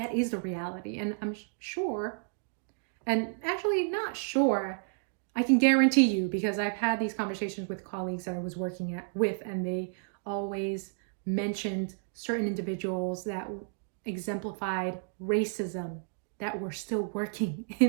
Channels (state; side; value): silent; left; digital silence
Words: is the reality. And I'm sure, and actually not sure, I can guarantee you, because I've had these conversations with colleagues that I was working with, and they always mentioned certain individuals that exemplified racism that were still working